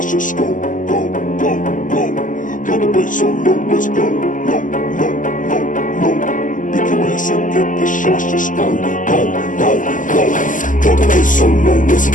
just go, go, go, go. Drop the bass so low, let's go. Low, low, low, low. Pick your ass and get the shots, just go, go, go, go. Drop the bass so low, let's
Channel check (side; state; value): right; late; 0.38 ms